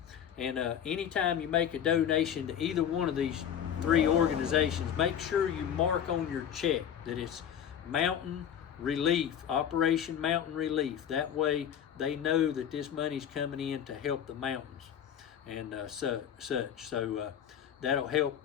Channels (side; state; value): right; quieter; 9.1 dB